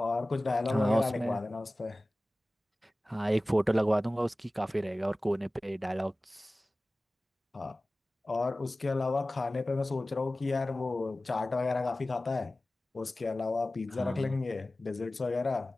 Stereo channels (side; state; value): both; normal; correlation 0.97